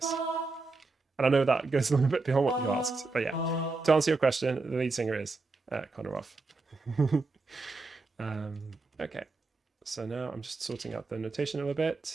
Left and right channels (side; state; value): left; quieter; 3.7 dB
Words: And I know that goes a little bit beyond what you asked, but yeah, to answer your question, the lead singer is Connor Roff. Okay, so now I'm just sorting out the notation a little